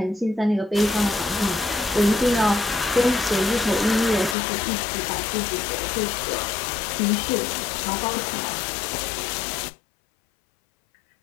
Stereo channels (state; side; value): drops out; right; at 4.4 s